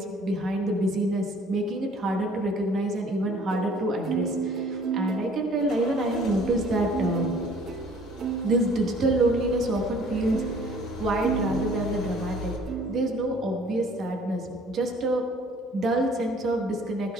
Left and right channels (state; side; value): normal; both; correlation 0.54